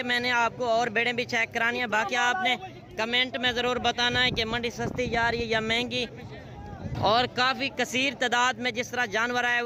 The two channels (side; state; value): both; identical; correlation 1.00